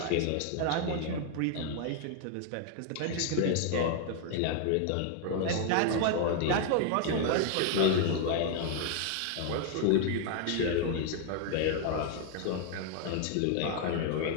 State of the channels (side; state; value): both; different; correlation 0.00